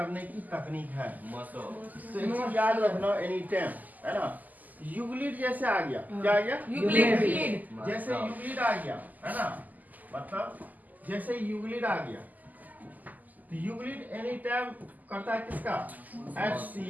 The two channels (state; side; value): late; left; 0.081 ms